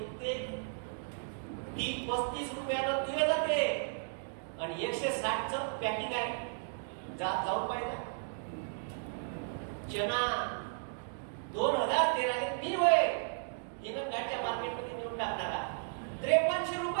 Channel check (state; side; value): silent; left; digital silence